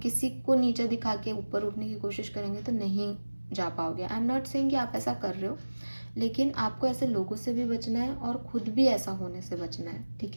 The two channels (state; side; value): inverted; both; correlation -1.00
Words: को नीचे दिखा के ऊपर उठने की कोशिश करेंगे तो नहीं जा पाओगे। आई एम नॉट सेइंग कि आप ऐसा कर रहे हो, लेकिन आपको ऐसे लोगों से भी बचना है और खुद भी ऐसा होने से बचना है, ठीक